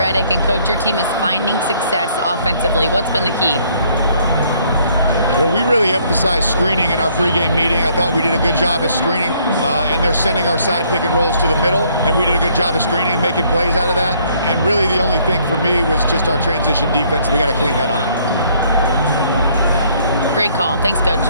and Coach, your team is finding success offensively. What's been the key? Well, we really emphasized screening in our pregame meeting. I thought we did a good job of screening, and they're sending our side pick and rolls to the middle, and we did a good job of screening and making plays out of that. And really the only thing for me was just our transition defense. We got to clean that up. Great call. Thanks, Coach.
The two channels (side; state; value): both; inverted; correlation -0.65